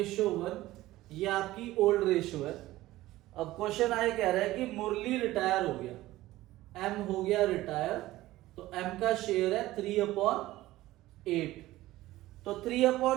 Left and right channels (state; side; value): quieter; left; 16.7 dB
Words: ये आपकी ओल्ड रेशो है। अब क्वेश्चन आए कह रहा है कि मुरली रिटायर हो गया, एम हो गया रिटायर, तो एम का शेयर है 3/8। तो